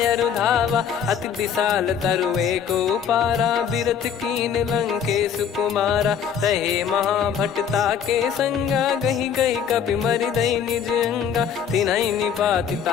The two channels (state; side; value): quieter; right; 7.9 dB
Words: रुधावा। अति विशाल तरुए को पारा, बिरथ कीन लंकेश कुमारा। रहे महाभटता के संगा, गही गही कपि मरि दई निज अंगा। तिन्हि निपाति